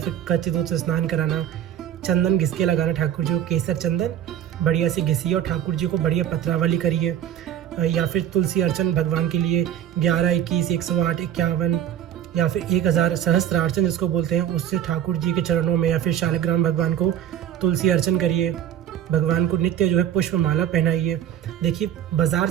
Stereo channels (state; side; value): quieter; left; 10.6 dB